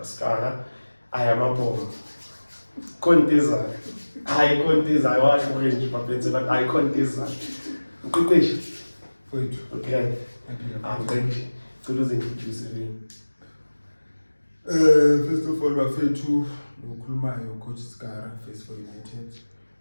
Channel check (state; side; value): inverted; both; correlation -1.00